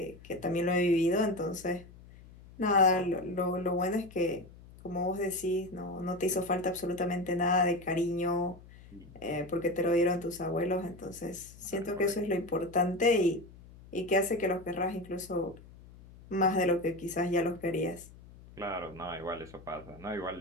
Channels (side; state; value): left; noise; hum, 20 dB below the sound